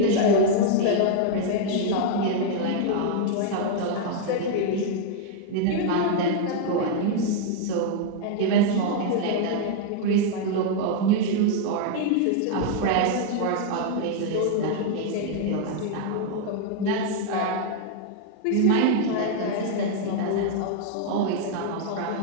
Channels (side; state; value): both; different; correlation 0.00